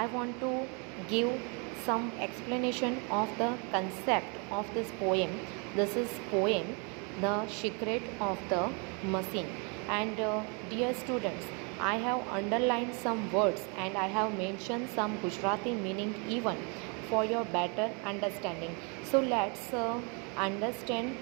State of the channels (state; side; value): quieter; left; 34.6 dB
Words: I want to give some explanation of the concept of this poem. This is poem The Secret of the Machine, and dear students, I have underlined some words and I have mentioned some Gujarati meaning even for your better understanding. So let's understand